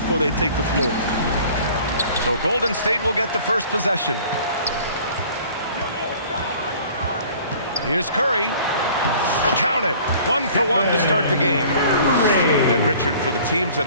they take the floor. So Golden State will get the first possession. Here's Curry. Count it. 1 for 1 to start the game. And Richard, for the teams that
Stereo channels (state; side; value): inverted; both; correlation -0.50